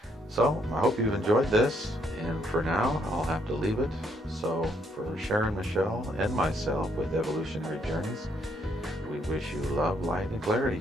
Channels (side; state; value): both; normal; correlation 0.71